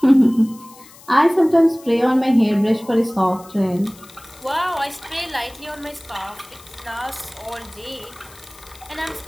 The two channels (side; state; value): left; noise; hiss, 22 dB below the sound